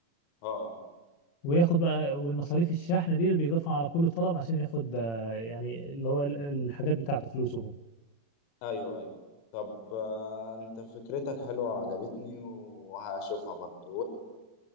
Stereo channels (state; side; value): late; right; 35 ms